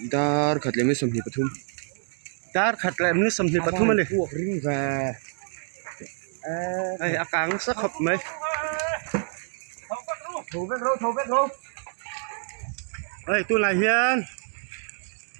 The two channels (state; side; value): silent; left; digital silence